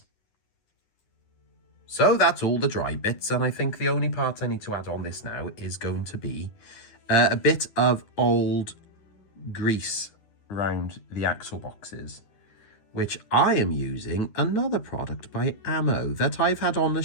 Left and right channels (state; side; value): late; right; 9.8 ms